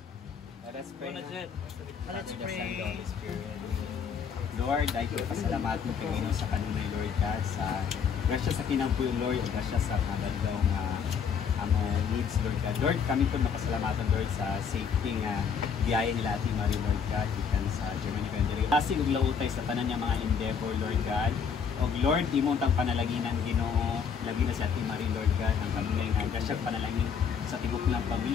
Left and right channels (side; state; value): right; quieter; 6.6 dB